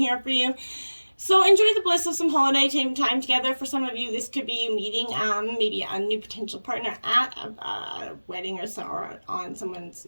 for you. So enjoy the bliss of some holiday time together. For some of you, this could be you meeting maybe a new potential partner at a wedding or on someone's,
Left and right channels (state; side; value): inverted; both; correlation -1.00